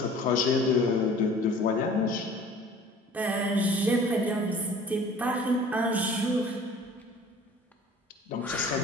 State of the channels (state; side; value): normal; both; correlation 0.47